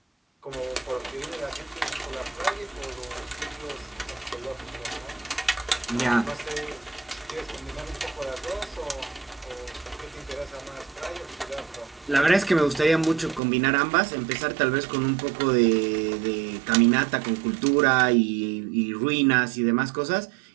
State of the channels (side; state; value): left; drops out; at 13.4 s